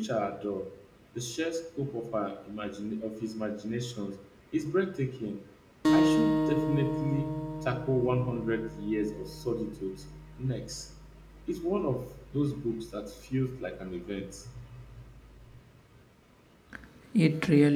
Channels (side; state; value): both; identical; correlation 1.00